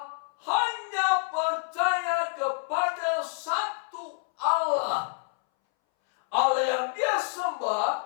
hanya percaya kepada satu Allah. Allah yang dia sembah,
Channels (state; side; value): silent; right; 60 dB below the other